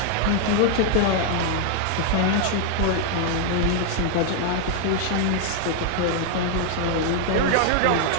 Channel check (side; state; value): both; different; correlation 0.00